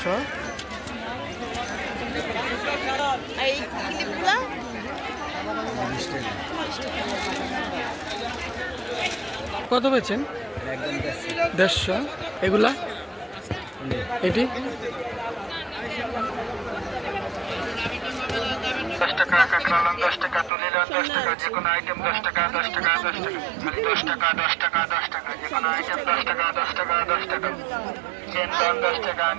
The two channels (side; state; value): left; drops out; at 20.5 s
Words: এই ক্লিপগুলো কত বেচেন 150 এগুলা এটি 10 টাকা কাঁকড়া 10 টাকা তুলে 10 টাকা যে কোনো আইটেম 10 টাকা 10 টাকা 10 টাকা মানে 10 টাকা 10 টাকা 10 টাকা যে কোনো আইটেম 10 টাকা 10 টাকা 10 টাকা চেন 10 টাকা